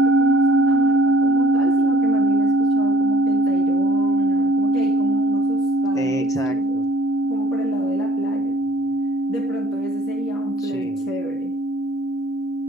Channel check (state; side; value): normal; both; correlation 0.55